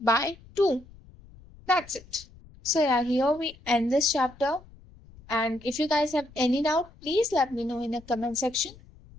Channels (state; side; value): noise; left; rumble, 23 dB below the sound